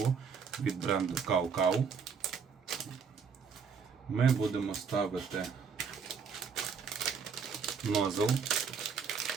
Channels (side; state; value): left; quieter; 6.0 dB